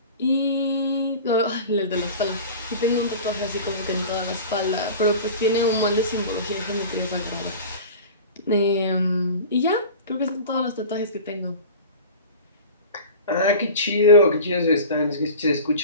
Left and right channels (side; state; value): both; inverted; correlation -0.36